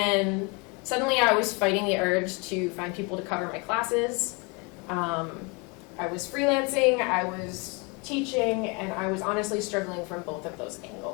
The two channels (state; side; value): quieter; right; 30.4 dB